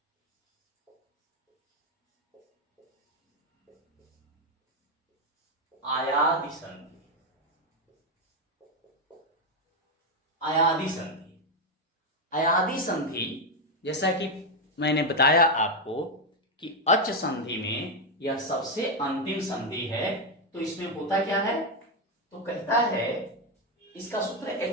अयादि संधि, अयादि संधि, अयादि संधि जैसा कि मैंने बताया आपको कि अच संधि में यह सबसे अंतिम संधि है। तो इसमें होता क्या है, तो कहता है इसका सूत्र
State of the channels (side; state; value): both; normal; correlation 0.05